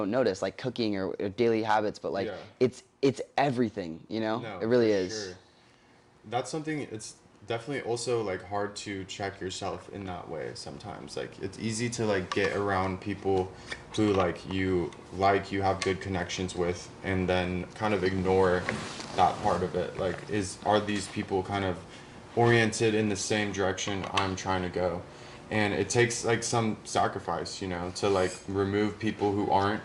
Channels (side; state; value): both; identical; correlation 1.00